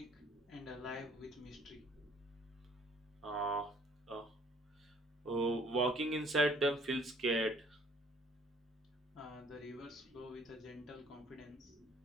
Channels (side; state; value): both; normal; correlation 0.58